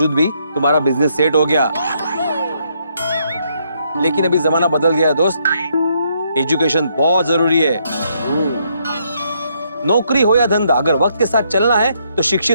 भी तुम्हारा बिजनेस सेट हो गया। लेकिन अभी जमाना बदल गया है दोस्त, एजुकेशन बहुत जरूरी है। नौकरी हो या धंधा, अगर वक्त के साथ चलना है तो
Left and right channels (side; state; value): both; inverted; correlation -0.73